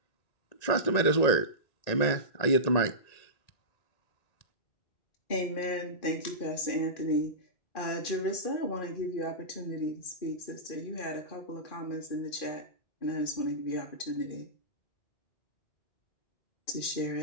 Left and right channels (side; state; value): right; late; 2.4 ms